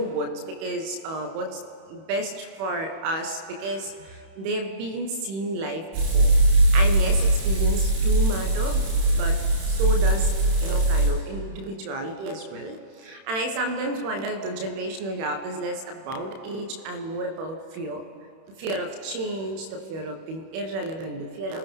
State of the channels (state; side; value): late; left; 31 ms